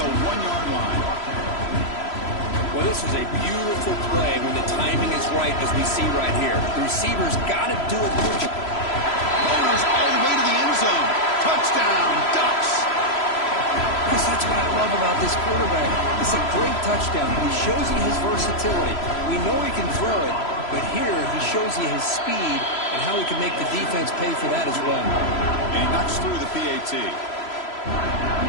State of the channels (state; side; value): late; right; 3.0 ms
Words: 1-yard line. Well, this is a beautiful play when the timing is right, as we see right here. The receiver's got to do a good job. Owners all the way to the end zone. Touchdown, Ducks. Because that's what I love about this quarterback. It's a great touchdown. He shows you his versatility. We know he can throw it, but here he shows you his speed and how he can make the defense pay for that as well. And he knocks through the PAT.